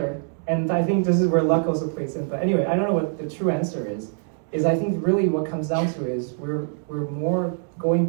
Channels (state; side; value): silent; left; 63 dB below the other